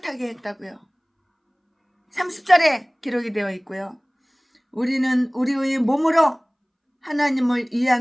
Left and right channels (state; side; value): identical; both; correlation 1.00